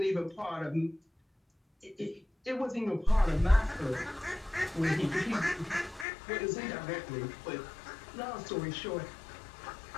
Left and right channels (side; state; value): right; drops out; at 6.1 s